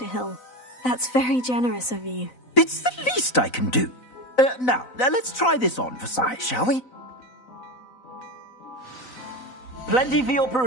Hill. That's very generous of you. It's the least I can do. Now, let's try this on for size, shall we? Plenty for your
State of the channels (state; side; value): late; right; 4.0 ms